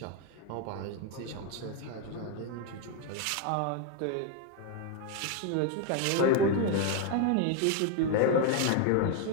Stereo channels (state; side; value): different; both; correlation 0.01